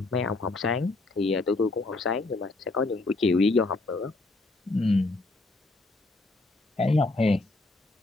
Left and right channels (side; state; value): right; quieter; 3.1 dB